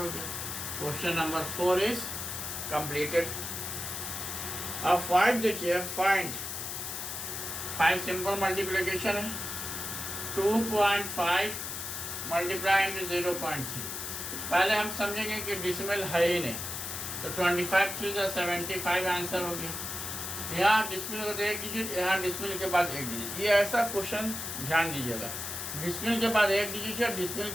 गया। Question number 4 is completed. अब 5 देखिए, फाइंड 5 सिंपल मल्टीप्लिकेशन है 2.5 मल्टीप्लाई इंटू 0.3। पहले हम समझेंगे कि डिसिमल है ही नहीं, तो 25 3 75 आंसर हो गया। यहाँ डिसिमल को एक डिजिट, यहाँ डिसिमल के बाद एक डिजिट, ये ऐसा क्वेश्चन ध्यान दीजिएगा, डिसिमल के बाद एक डिजिट है, डिसिमल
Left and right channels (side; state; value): left; noise; hiss, 5 dB below the sound